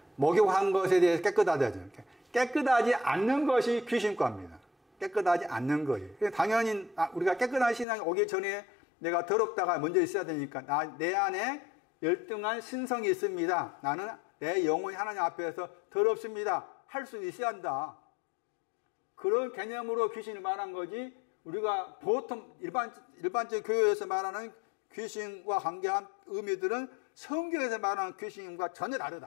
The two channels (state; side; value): drops out; right; at 7.9 s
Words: 목욕한 것에 대해서 깨끗하다죠. 깨끗하지 않는 것이 귀신과입니다. 깨끗하지 않는 거예요. 당연히 우리가 깨끗한 신앙이 오기 전에 내가 더럽다가 먼저 있어야 되니까 내 안에 열등한 신성이 있습니다. 나는 내 영혼이 하나님 앞에서 더럽습니다. 할 수 있어야 한다. 그런 개념으로 귀신을 말한 거지 우리가 보통 일반적 교회에서 말하는 귀신과 관계한 의미들은 성경에서 말하는 귀신과 전혀